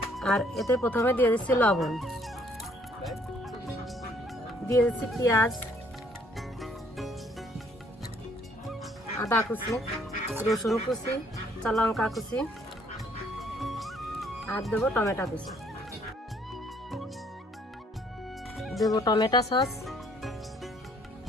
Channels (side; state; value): both; normal; correlation 0.64